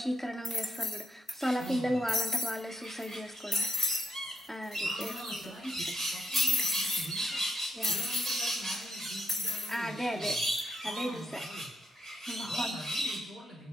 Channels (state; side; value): normal; both; correlation 0.83